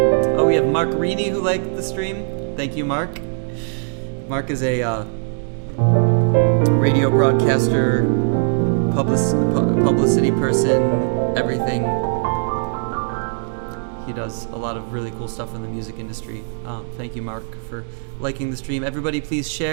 Oh, we have Mark Reedy who liked the stream. Thank you, Mark. Mark is a radio broadcaster, publicity person, everything. He does a lot of really cool stuff in the music industry. Thank you, Mark, for liking the stream. Everybody, please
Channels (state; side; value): silent; left; 63 dB below the other